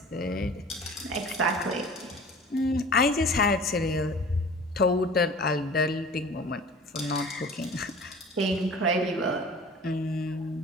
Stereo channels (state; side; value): normal; both; correlation 0.43